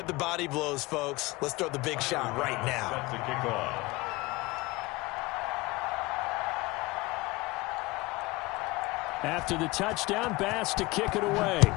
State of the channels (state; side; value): quieter; right; 22.2 dB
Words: the body blows, folks. Let's throw the big shot right now. That's a kickoff. After the touchdown, Bass to kick it away.